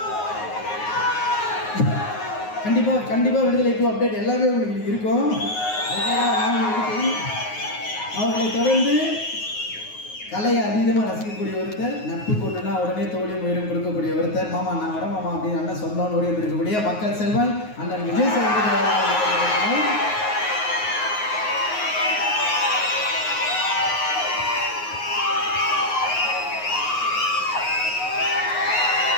கண்டிப்பாக விடுதலை டூ அப்டேட் எல்லாமே உங்களுக்கு இருக்கும். அவர்களை தொடர்ந்து கலையை அதீதமாக ரசிக்கக்கூடிய ஒருத்தர், நட்பு கொண்டுனா உடனே தோழியும் உயிரும் கொடுக்கக்கூடிய ஒருத்தர், மாமா நான் வரேன் மாமா அப்படின்னு அண்ணன் சொந்தம் ஓடி இருக்கக்கூடிய மக்கள் செல்வன் அண்ணன் விஜய் சேதுபதி.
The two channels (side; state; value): right; late; 9.5 ms